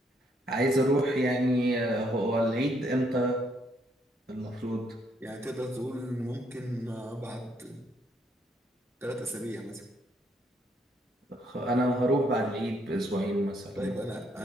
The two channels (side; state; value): both; normal; correlation 0.71